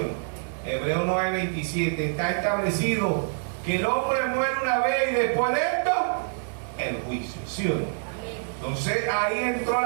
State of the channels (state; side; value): silent; left; digital silence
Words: no? Hebreos 9:27. Está establecido que el hombre muere una vez y después de esto el juicio, ¿sí o no? Entonces ahí entró